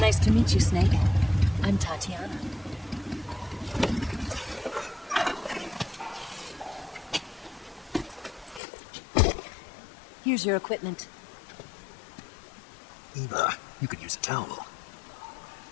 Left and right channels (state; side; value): drops out; right; at 8.6 s